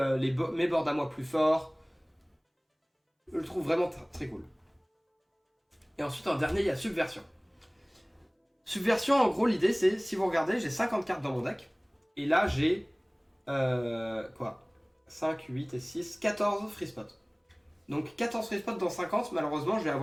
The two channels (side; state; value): both; identical; correlation 1.00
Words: mes boards à moi plus forts. Je le trouve vraiment très cool. Et ensuite en dernier il y a Subversion. Subversion, en gros, l'idée c'est, si vous regardez, j'ai 50 cartes dans mon deck. Et là, j'ai... quoi 5, 8 et 6, 14 free spots. Donc 14 free spots dans 50, malheureusement, je vais